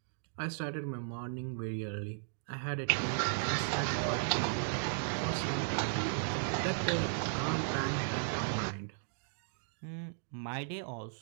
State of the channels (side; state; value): left; silent; digital silence